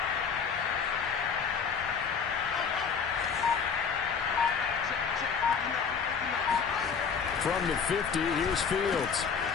From the 50, here's Fields.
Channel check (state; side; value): quieter; right; 6.2 dB